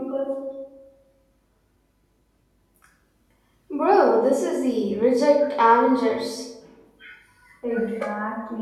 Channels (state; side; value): identical; both; correlation 1.00